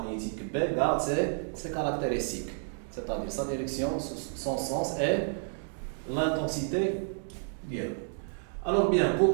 B garde ses caractéristiques, c'est-à-dire sa direction, son sens et l'intensité. Bien. Alors bien,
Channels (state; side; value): silent; left; digital silence